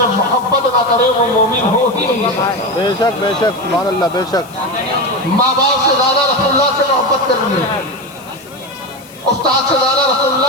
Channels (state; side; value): noise; left; hiss, 23 dB below the sound